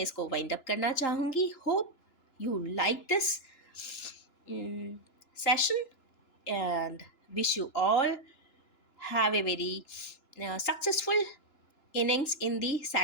इसको वाइंड अप करना चाहूँगी। Hope you like this session and wish you all have a very successful innings in the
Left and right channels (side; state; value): right; late; 2.9 ms